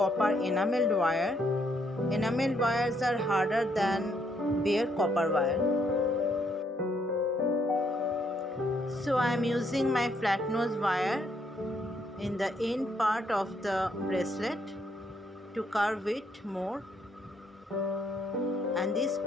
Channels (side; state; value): both; normal; correlation 0.72